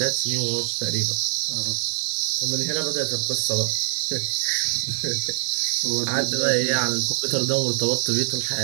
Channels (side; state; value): left; silent; digital silence